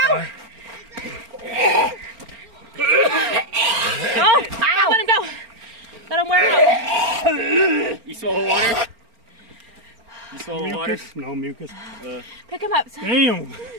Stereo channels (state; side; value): late; left; 4.4 ms